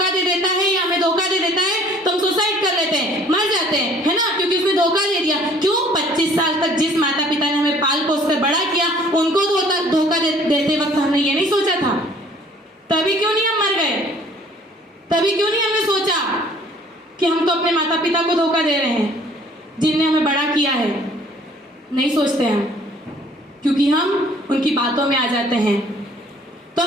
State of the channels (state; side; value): normal; both; correlation 0.55